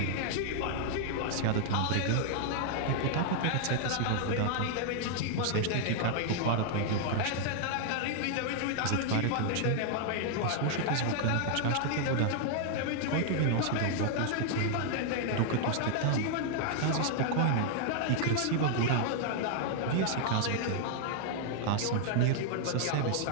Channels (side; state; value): both; different; correlation 0.00